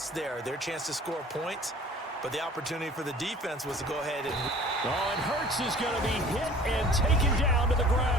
there. Their chance to score points, but the opportunity for the defense was to go ahead and... Oh, and Hurts is going to be hit and taken down to the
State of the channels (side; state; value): both; normal; correlation 0.48